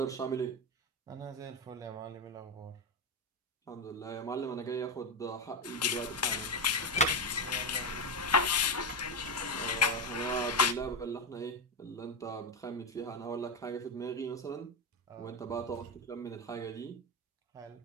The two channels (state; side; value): normal; both; correlation 0.11